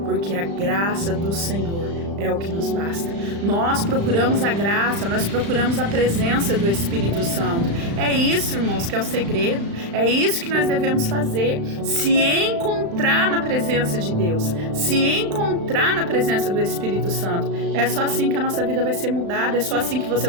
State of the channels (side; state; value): left; late; 35 ms